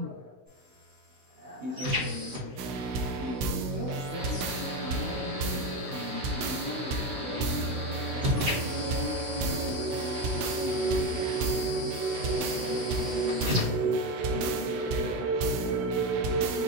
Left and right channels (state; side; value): late; left; 16 ms